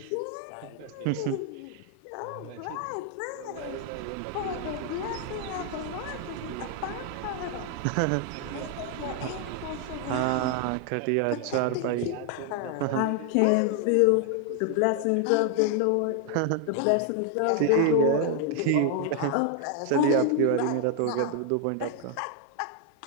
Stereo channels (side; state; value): both; different; correlation 0.00